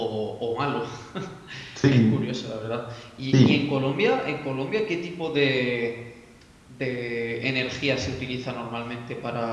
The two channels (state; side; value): identical; both; correlation 1.00